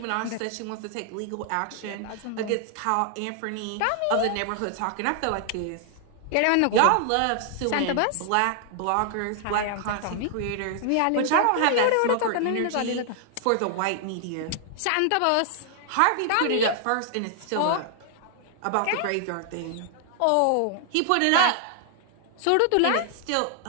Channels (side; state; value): both; different; correlation 0.00